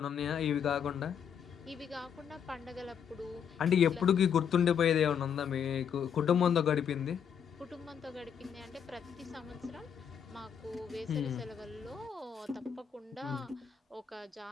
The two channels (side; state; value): right; quieter; 7.7 dB